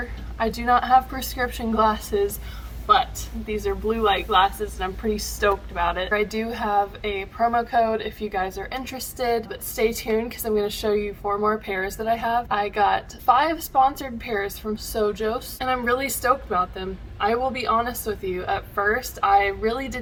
I do not have prescription glasses, but these are blue light glasses and I'm pretty stoked about it. I do have a promo code if you guys are interested, but stay tuned because I'm going to show you 4 more pairs that I have. I got 5 sponsored pairs from SOJOS and I'm really stoked about them. I will be honest with you, at first I really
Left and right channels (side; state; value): both; identical; correlation 1.00